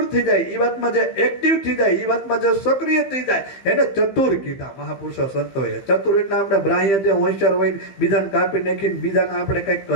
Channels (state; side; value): late; right; 15 ms